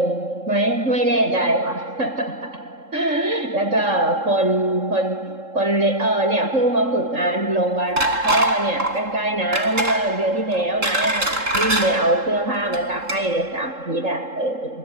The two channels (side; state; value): left; late; 3.7 ms